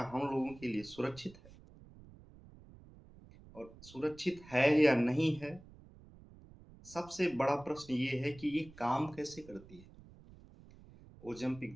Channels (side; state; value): right; noise; rumble, 21 dB below the sound